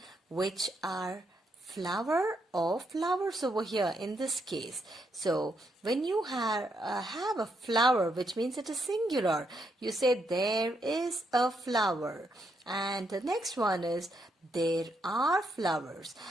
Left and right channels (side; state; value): both; normal; correlation 0.78